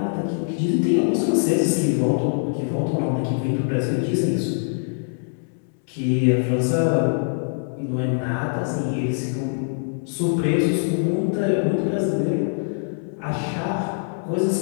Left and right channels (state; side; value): silent; right; 63 dB below the other